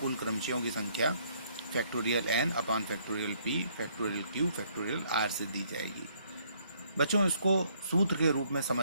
क्रमचयों की संख्या factorial n upon factorial p factorial q factorial r से दी जाएगी। बच्चों, इसको सूत्र के रूप में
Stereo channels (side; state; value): both; inverted; correlation -0.67